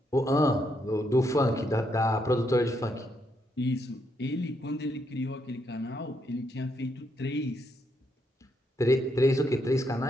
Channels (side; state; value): both; normal; correlation 0.77